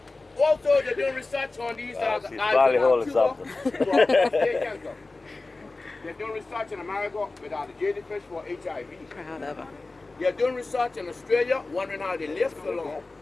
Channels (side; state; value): right; quieter; 3.3 dB